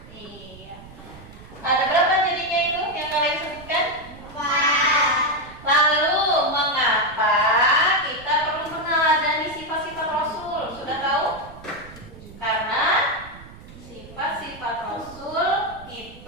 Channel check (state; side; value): noise; right; rumble, 18 dB below the sound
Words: iya. Ada berapa jadinya itu yang kalian sebutkan? Lalu mengapa kita perlu meneladani sifat-sifat Rasul? Sudah tahu? Karena sifat-sifat Rasul